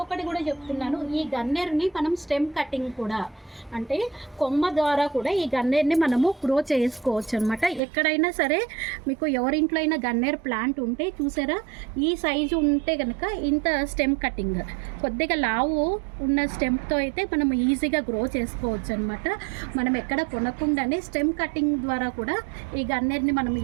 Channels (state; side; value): drops out; left; at 7.8 s